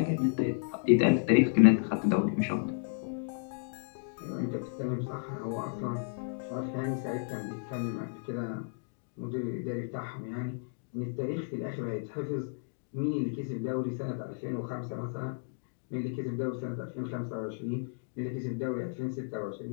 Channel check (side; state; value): right; silent; digital silence